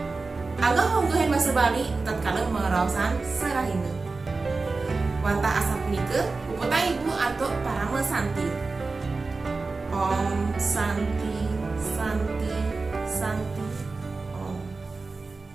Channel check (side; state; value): left; quieter; 3.9 dB